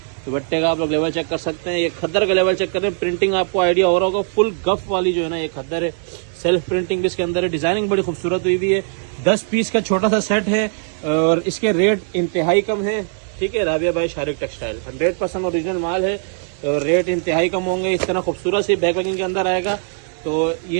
दुपट्टे का आप लोग लेवल चेक कर सकते हैं। ये खद्दर का लेवल चेक करें, प्रिंटिंग आपको आइडिया हो रहा होगा, फुल गफ वाली जो है ना ये खद्दर है। सेल्फ प्रिंटिंग भी इसके अंदर है, डिजाइनिंग बड़ी खूबसूरत हुई हुई है। 10 पीस का छोटा सा सेट है और इसके रेट इंतहाई कम है। ठीक है, राबिया भाई शारिक टेक्सटाइल 100% ओरिजिनल माल है और रेट इंतहाई कम होंगे। इस तरह खूबसूरत सी बैक पैकिंग के अंदर आएगा, तो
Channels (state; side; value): silent; left; 64 dB below the other